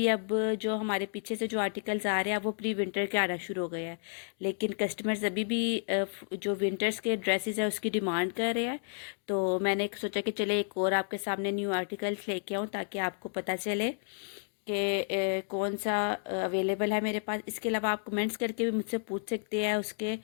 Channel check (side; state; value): right; silent; digital silence